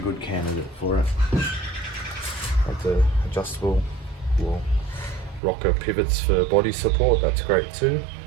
candidate for it. Like the adjustable rocker pivots for body support, that's great too.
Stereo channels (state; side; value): drops out; left; at 5.4 s